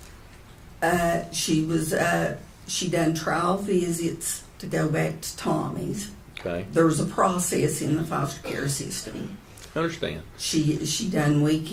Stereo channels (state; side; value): identical; both; correlation 1.00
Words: She done trial visits to go back to Tommy's. Okay. There was a process in the foster care system. I understand. She done